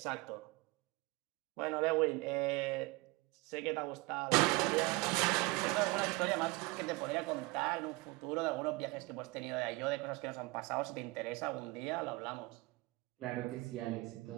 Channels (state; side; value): quieter; left; 23.3 dB